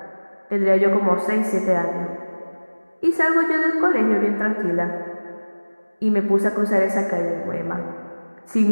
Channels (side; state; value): both; inverted; correlation -1.00